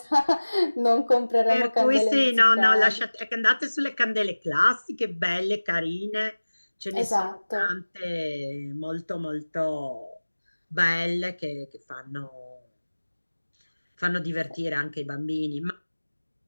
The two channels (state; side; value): inverted; both; correlation -1.00